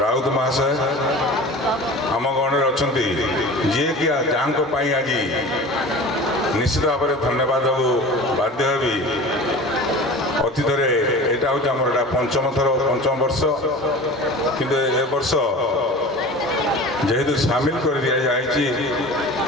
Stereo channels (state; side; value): normal; both; correlation 0.37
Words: ରାଉତ ମହାଶୟ ଆମ ଗଣରେ ଅଛନ୍ତି, ଯିଏକି ଯାହାଙ୍କ ପାଇଁ ଆଜି ନିଶ୍ଚିତ ଭାବରେ ଧନ୍ୟବାଦ ଦେବାକୁ ବାଧ୍ୟ ହେବି। ଅତୀତରେ ଏଇଟା ହେଉଛି ଆମର ଏଇଟା ପଞ୍ଚମ ବର୍ଷ, କିନ୍ତୁ ଏ ବର୍ଷ ଯେହେତୁ ସାମିଲ କରି ଦିଆଯାଇଛି